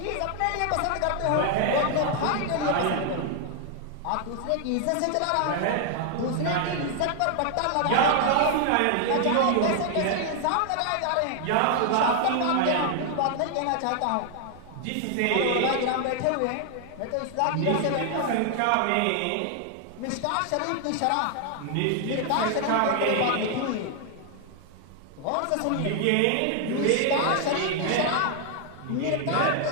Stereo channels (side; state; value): both; different; correlation 0.00